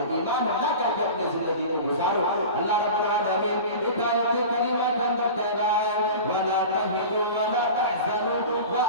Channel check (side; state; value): both; inverted; correlation -0.34